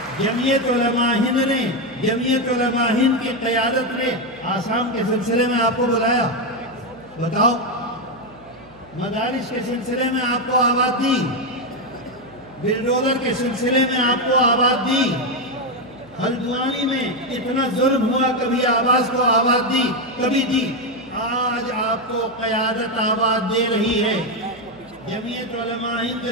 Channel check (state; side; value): noise; right; hum, 27 dB below the sound